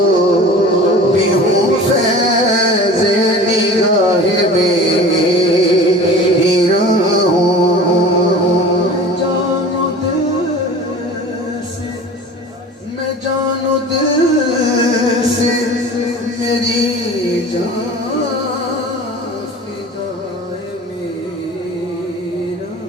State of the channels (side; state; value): both; normal; correlation 0.40